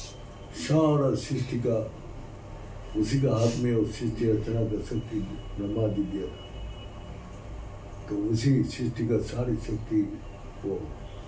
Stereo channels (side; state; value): both; identical; correlation 1.00